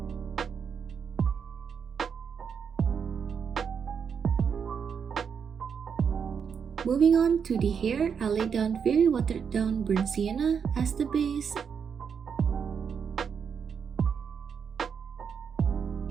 Moving on to the hair, I laid down very watered down burnt sienna as the base.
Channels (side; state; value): left; quieter; 6.8 dB